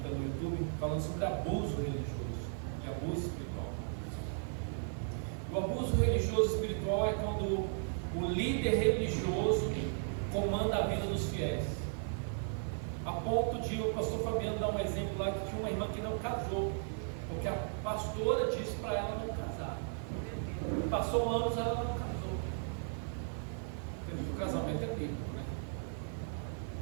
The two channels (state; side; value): silent; left; digital silence